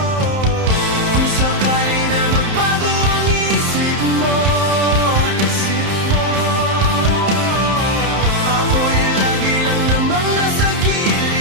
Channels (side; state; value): left; late; 31 ms